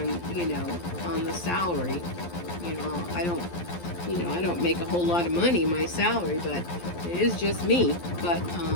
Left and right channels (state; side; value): late; right; 12 ms